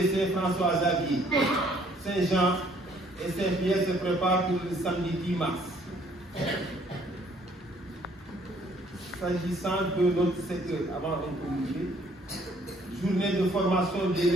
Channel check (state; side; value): normal; both; correlation 0.62